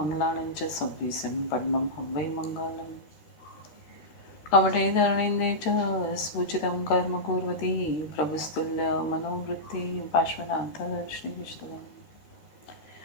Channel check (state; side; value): late; right; 13 ms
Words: च संविसिं पद्मं हं वै मङ्गलम् कमठे धरणीन्दे च स्फुचितं कर्म कुर्वती प्रभुस्तुल्यमनोवृत्ति पार्श्वनाथ श्रीविष्णुः